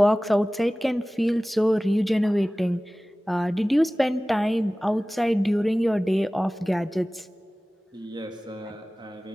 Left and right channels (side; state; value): both; normal; correlation 0.98